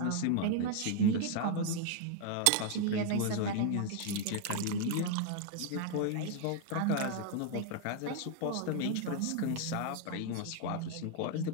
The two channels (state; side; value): different; both; correlation 0.00